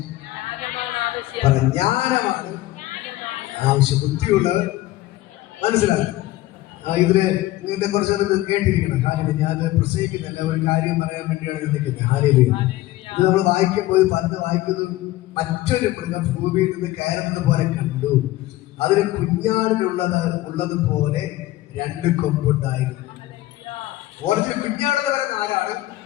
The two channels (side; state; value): right; quieter; 16.6 dB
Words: ജ്ഞാനമാണ് ആവശ്യം. ബുദ്ധിയുള്ളവൻ മനസ്സിലാക്കും. ഇതില് ഇങ്ങനത്തെ കുറച്ചൊന്ന് കേട്ടിരിക്കണം. ഹല്ലേലൂയ. ഞാൻ പ്രസംഗിക്കുന്നില്ല, ഒരു കാര്യം പറയാൻ വേണ്ടിയാണ് നിൽക്കുന്നത്. ഹല്ലേലൂയ. ഇത് നമ്മൾ വായിക്കുമ്പോൾ പലത് വായിക്കുന്നു. മറ്റൊരു മൃഗം ഭൂമിയിൽ നിന്ന് കയറുന്നത് പോലെ കണ്ടു. അതിന് കുഞ്ഞാടിനുള്ളതുപോലെ 2 കൊമ്പുണ്ടായിരുന്നു. ഓരോ കുഞ്ഞാടെന്ന് പറയുന്ന ആരാണ്?